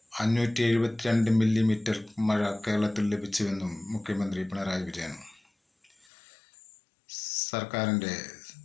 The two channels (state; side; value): drops out; right; at 6.1 s